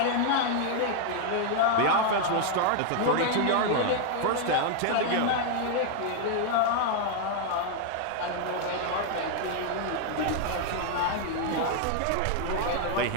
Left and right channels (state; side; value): different; both; correlation 0.00